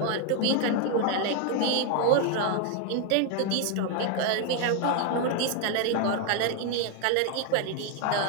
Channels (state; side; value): different; both; correlation 0.00